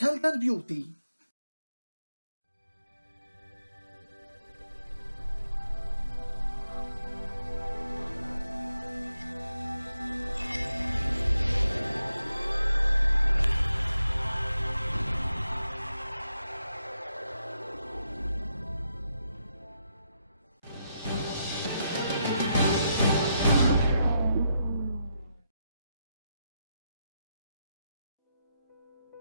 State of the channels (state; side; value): inverted; both; correlation -0.82